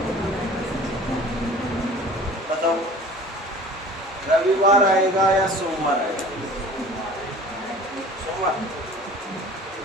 बताओ रविवार आएगा या सोमवार आएगा? सोमवार।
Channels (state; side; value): normal; both; correlation 0.44